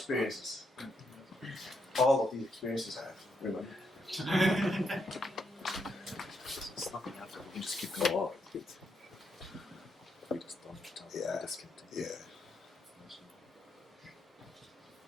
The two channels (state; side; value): normal; both; correlation 0.79